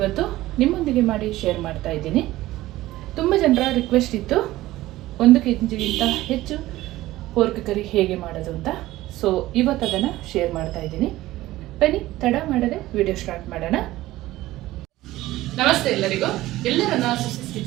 ನಿಮ್ಮೊಂದಿಗೆ ಮಾಡಿ ಶೇರ್ ಮಾಡ್ತಾ ಇದ್ದೀನಿ. ತುಂಬ ಜನರ ರಿಕ್ವೆಸ್ಟ್ ಇತ್ತು 1 kgಗಿಂತ ಹೆಚ್ಚು ಪೋರ್ಕ್ ಕರಿ ಹೇಗೆ ಮಾಡೋದು ಅಂತ. ಸೊ ಇವತ್ತು ಅದನ್ನು ಶೇರ್ ಮಾಡ್ತಾ ಇದ್ದೀನಿ. ಬನ್ನಿ ತಡ ಮಾಡದೆ ವಿಡಿಯೋ ಸ್ಟಾರ್ಟ್ ಮಾಡೋಣ. ನಮಸ್ತೆ ಎಲ್ಲರಿಗೂ, ಎಲ್ಲರನ್ನ ಸುಸಿಸ್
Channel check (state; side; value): quieter; left; 16.6 dB